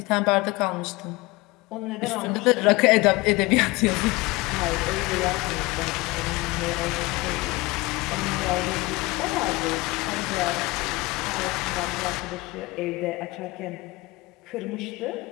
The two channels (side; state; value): right; quieter; 22.6 dB